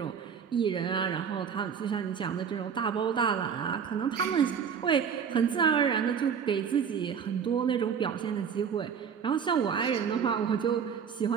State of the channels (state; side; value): quieter; left; 7.2 dB